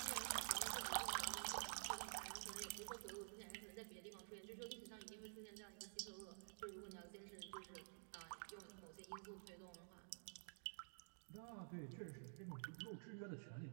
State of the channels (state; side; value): silent; left; digital silence